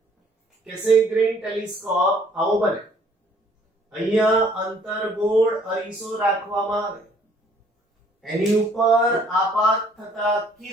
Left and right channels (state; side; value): normal; both; correlation 0.60